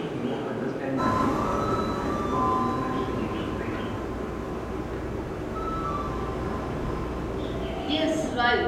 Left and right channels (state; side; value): identical; both; correlation 1.00